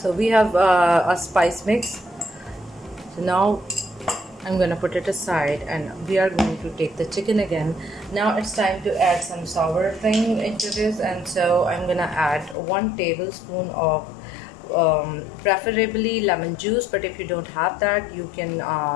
we have a spice mix. So now I'm gonna put it aside, and we are going to take the chicken again. Now it's time to add some sour thing into this, and so I'm gonna add 1 tablespoon of preferably lemon juice, but if you don't have that, you can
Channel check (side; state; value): right; drops out; at 12.6 s